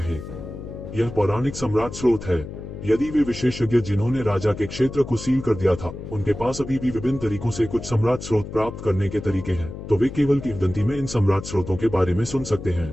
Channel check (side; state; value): left; noise; hum, 10 dB below the sound